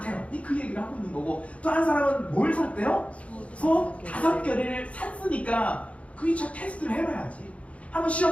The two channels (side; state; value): right; late; 0.064 ms